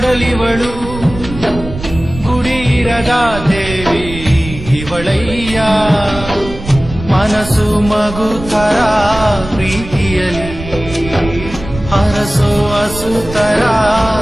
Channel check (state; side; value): noise; right; rumble, 11 dB below the sound